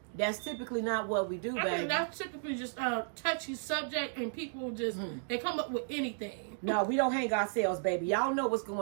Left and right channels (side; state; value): left; silent; digital silence